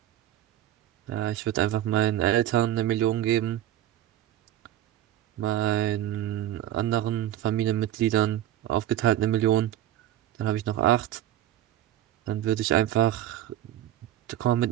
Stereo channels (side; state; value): left; quieter; 12.7 dB